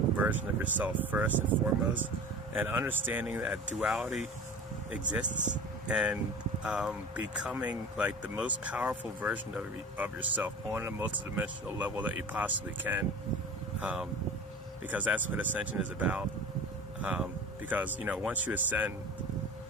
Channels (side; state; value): both; normal; correlation 0.37